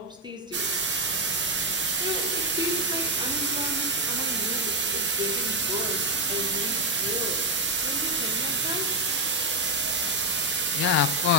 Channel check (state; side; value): normal; both; correlation 0.04